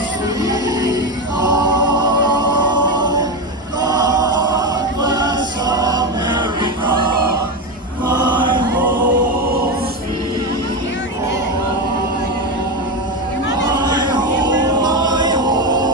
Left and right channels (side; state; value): both; normal; correlation 0.14